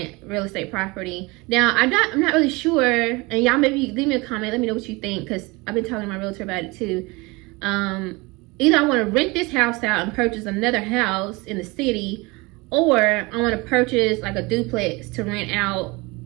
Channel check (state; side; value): quieter; left; 24.8 dB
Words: real estate property. Now, I'm not really sure, and y'all maybe leave me a comment, let me know what you think, because I've been talking to my realtor about it too. Either I want to rent this house out and purchase another house in the city, or I want to purchase like a duplex to rent out